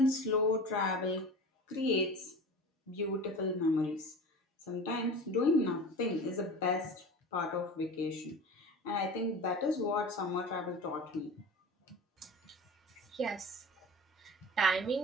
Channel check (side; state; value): both; normal; correlation 0.34